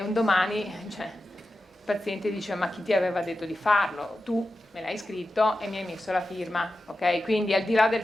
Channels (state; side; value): normal; both; correlation 0.92